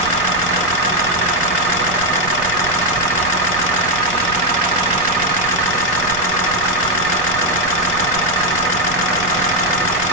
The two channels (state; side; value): noise; right; rumble, 15 dB below the sound